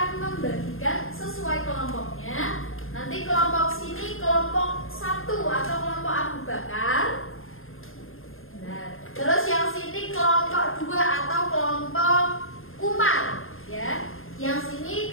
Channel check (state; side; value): late; right; 0.60 ms